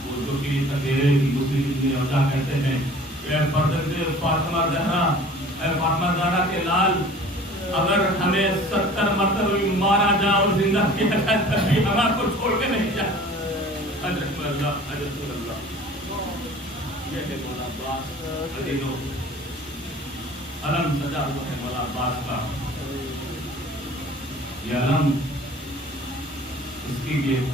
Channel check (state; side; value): normal; both; correlation 0.46